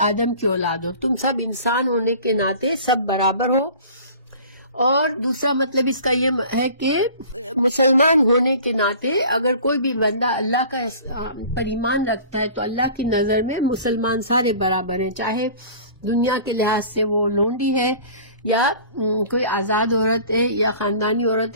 آدم کی اولاد ہو، تم سب انسان ہونے کے ناطے سب برابر ہو. اور دوسرا مطلب اس کا یہ ہے کہ مسلمان ہونے کے ناطے اگر کوئی بھی بندہ اللہ کا پر ایمان رکھتا ہے تو اللہ کی نظر میں مسلمان سارے برابر ہیں، چاہے دنیا کے لحاظ سے وہ لونڈی ہے یا کوئی آزاد عورت ہے یا خاندانی عورت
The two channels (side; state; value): both; inverted; correlation -0.44